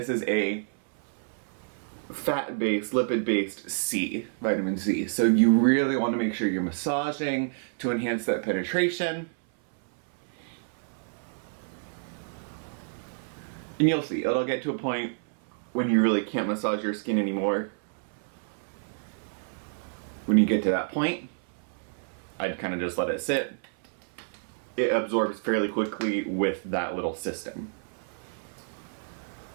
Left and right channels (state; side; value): silent; left; 57 dB below the other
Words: is a fat-based, lipid-based C, vitamin C. So you really want to make sure you're massaging to enhance that penetration. And you'll see, it'll get to a point when you really can't massage your skin anymore. When you get to that point, I'd kind of just let it sit. It absorbs fairly quickly with that little system.